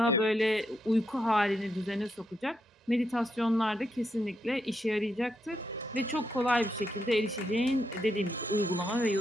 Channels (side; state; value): both; normal; correlation 0.81